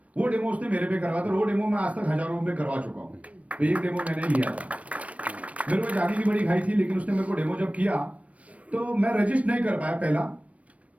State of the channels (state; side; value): late; left; 0.065 ms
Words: वो डेमो उसने मेरे पे करवा था। वो डेमो मैं आज तक हजारों रुपए करवा चुका हूँ। तो एक डेमो मैंने लिया था, मेरे को जानी की बड़ी खाई थी, लेकिन उसने मेरे को डेमो जब किया तो मैं रजिस्ट नहीं कर पाया पहला।